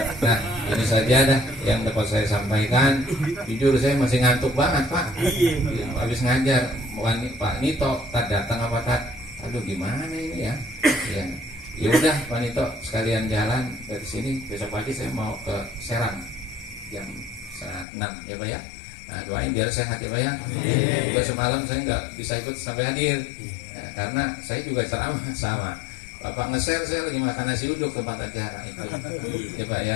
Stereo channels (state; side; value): drops out; right; at 17.9 s